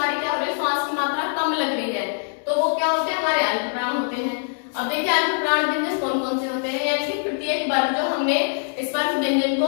क्या हो रही है? श्वास की मात्रा कम लग रही है तो वो क्या होते हैं? हमारे अल्पप्राण होते हैं। अब देखिए अल्पप्राण व्यंजन कौन कौन से होते हैं, यानी कि प्रत्येक वर्ग जो हमने इस बार व्यंजन को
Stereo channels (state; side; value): silent; right; digital silence